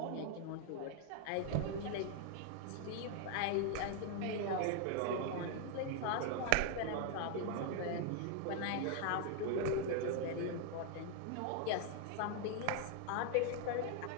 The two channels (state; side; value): different; both; correlation 0.00